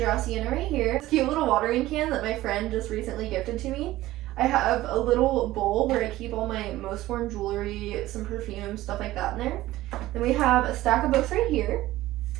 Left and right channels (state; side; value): quieter; left; 16.3 dB